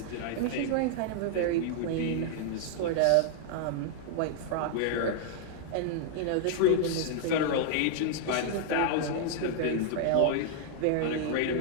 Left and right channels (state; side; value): different; both; correlation 0.00